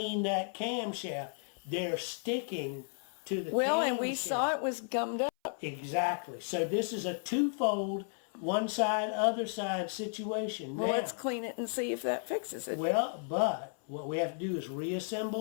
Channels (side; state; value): right; silent; 55 dB below the other